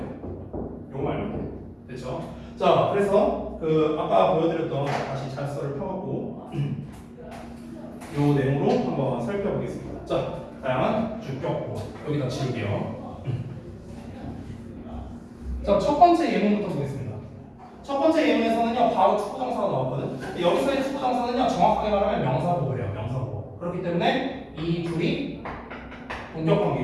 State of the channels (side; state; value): both; identical; correlation 1.00